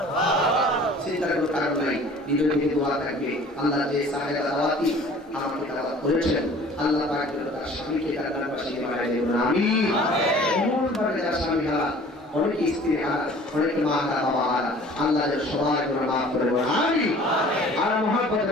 চিন্তার কোনো কারণ নাই নিজের দিকে দোয়া থাকবে আল্লাহ যে সাহেব দাওয়াতি আমাকে দাওয়াত করেছেন আল্লাহ পাক তার স্বামীকে জান্নাতবাসী বানায় দেন আমিন এমন ভাবে যার স্বামী হারা অনেক স্ত্রী হারা অনেক মা হারা বাবা হারা আল্লাহ যে সবাই করে মাফ করে দেন আমিন আর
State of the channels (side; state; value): both; normal; correlation 0.49